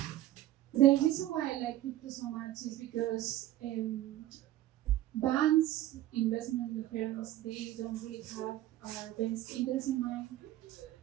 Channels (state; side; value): quieter; left; 14.3 dB